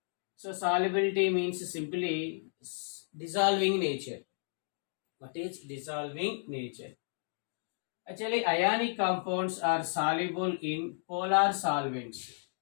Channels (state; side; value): silent; right; digital silence